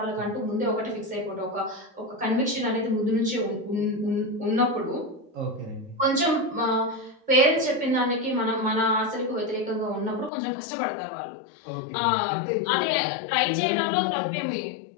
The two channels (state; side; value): drops out; right; at 10.3 s